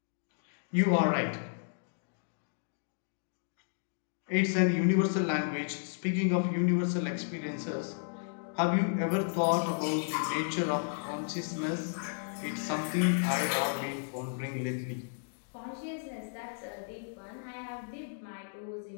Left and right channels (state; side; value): silent; right; digital silence